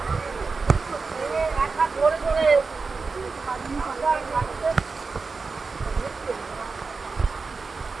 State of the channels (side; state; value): left; quieter; 4.4 dB